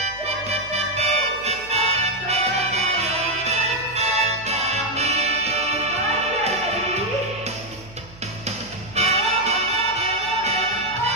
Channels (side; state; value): right; noise; hum, 20 dB below the sound